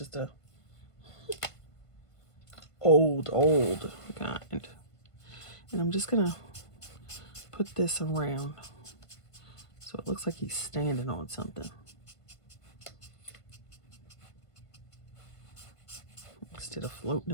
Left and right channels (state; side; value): late; right; 1.5 ms